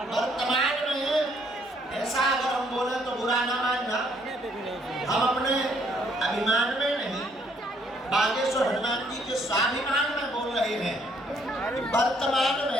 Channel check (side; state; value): both; normal; correlation 0.68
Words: वर्तमान में ऐसा अगर हम बोले तो बुरा ना मानना, हम अपने अभिमान में नहीं, बागेश्वर हनुमान जी के स्वाभिमान में बोल रहे हैं। वर्तमान